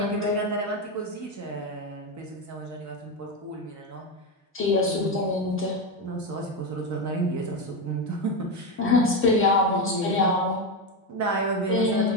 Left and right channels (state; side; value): normal; both; correlation 0.12